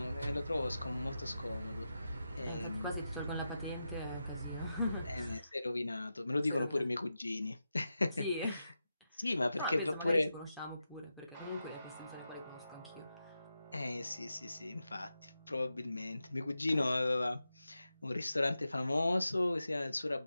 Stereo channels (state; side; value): inverted; both; correlation -0.90